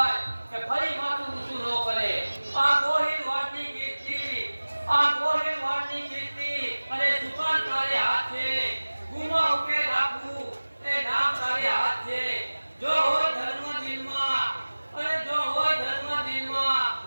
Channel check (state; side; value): inverted; both; correlation -1.00